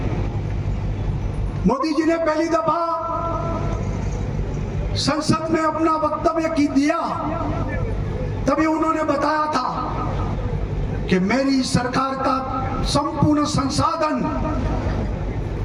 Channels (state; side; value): identical; both; correlation 1.00